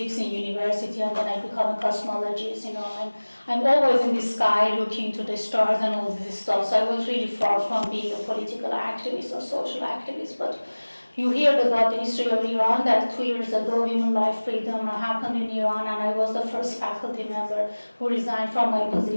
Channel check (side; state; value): both; inverted; correlation -1.00